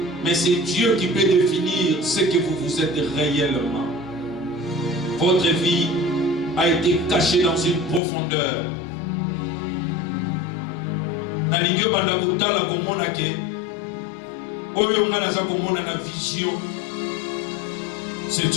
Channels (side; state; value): right; drops out; at 8.0 s